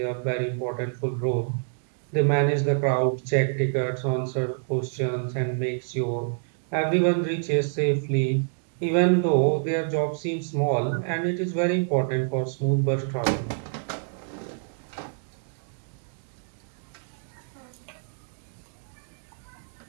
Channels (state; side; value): silent; left; digital silence